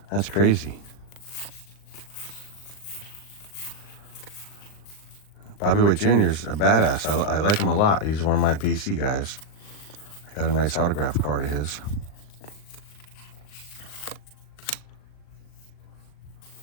That's crazy. Bobby Witt Jr. is a badass. I like him a lot. He's one of my PC guys. I got a nice autograph card of his.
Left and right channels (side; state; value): right; late; 39 ms